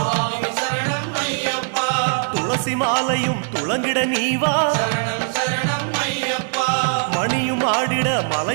சரணம் ஐயப்பா துளசி மாலையும் துளங்கிட நீவா சரணம் சரணம் ஐயப்பா மணியும் ஆடிட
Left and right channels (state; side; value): silent; left; 65 dB below the other